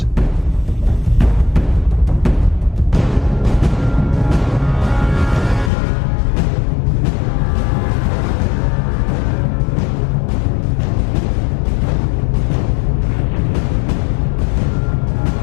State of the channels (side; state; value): right; drops out; at 5.7 s